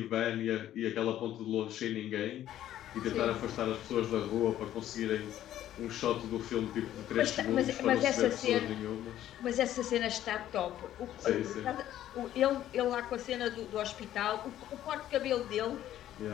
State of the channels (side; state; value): right; quieter; 12.3 dB